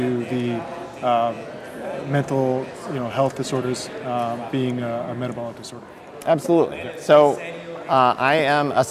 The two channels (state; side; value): identical; both; correlation 1.00